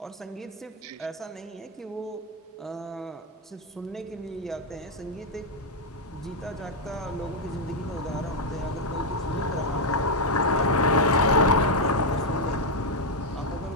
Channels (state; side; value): normal; both; correlation 0.02